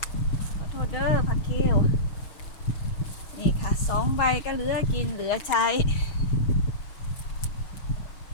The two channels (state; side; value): late; right; 6.3 ms